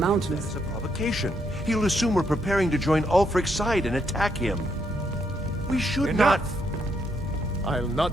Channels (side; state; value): both; normal; correlation 0.76